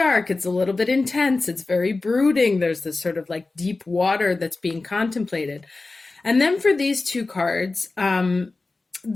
It's a little bit intense. It's very brooding. There's this sort of like deep water that's being contemplated. And then for these two cards,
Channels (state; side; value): quieter; right; 3.5 dB